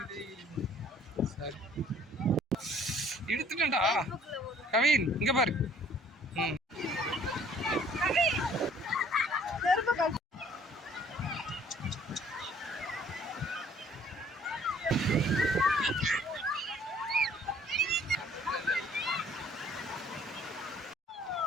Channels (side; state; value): both; normal; correlation 0.58